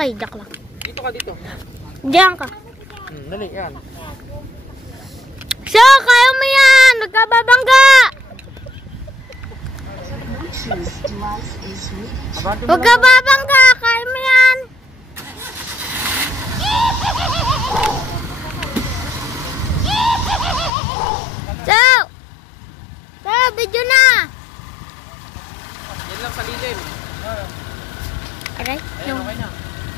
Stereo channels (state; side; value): drops out; right; at 20.7 s